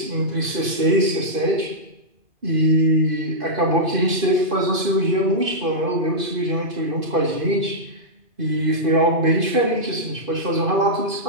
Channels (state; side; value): late; left; 2.5 ms